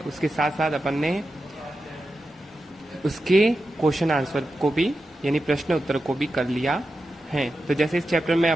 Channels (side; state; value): both; normal; correlation 0.90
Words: उसके साथ साथ अपन ने उसके क्वेश्चन आंसर को भी यानी प्रश्न उत्तर को भी कर लिया है। तो जैसे इस चैप्टर में